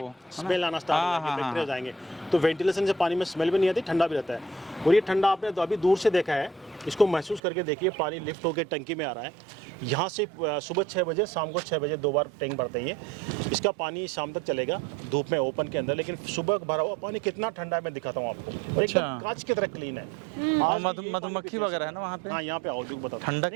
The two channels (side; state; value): left; drops out; at 7.4 s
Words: स्मेल आना स्टार्ट हो जाएगी, बैक्टीरिया जाएंगे। तो वेंटिलेशन से पानी में स्मेल भी नहीं आती, ठंडा भी रहता है। और ये ठंडा आपने तो अभी दूर से देखा है, इसको महसूस करके देखिए। पानी लिफ्ट होकर टंकी में आ रहा है। यहाँ से सुबह 6 बजे, शाम को 6 बजे 2 बार टैंक भरते हैं। इसका पानी शाम तक चलेगा धूप में ओपन के अंदर, लेकिन सुबह भरा हुआ पानी कितना ठंडा है मैं दिखाता हूँ आपको। और एकदम कांच की तरह क्लीन है। और मधुमक्खी वगैरह है ना वहाँ पे? हाँ, यहाँ पे आओ जो बताओ।